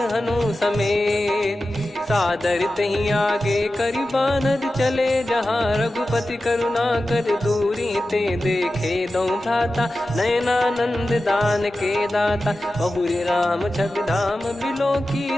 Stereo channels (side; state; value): both; normal; correlation 0.93